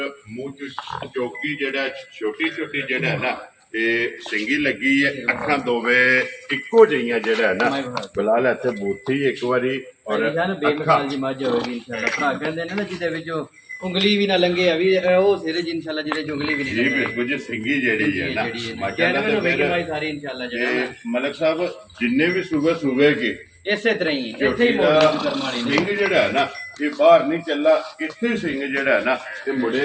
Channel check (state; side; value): identical; both; correlation 1.00